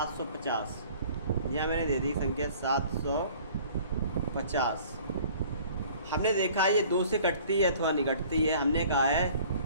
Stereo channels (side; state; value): both; inverted; correlation -0.51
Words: यहाँ मैंने दे दी संख्या 750। हमने देखा ये 2 से कटती है अथवा नहीं कटती है। हमने कहा है